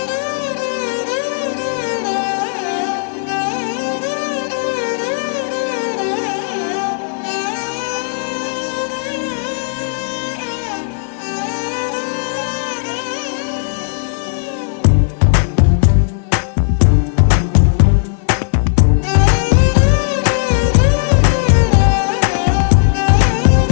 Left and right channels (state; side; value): silent; right; 55 dB below the other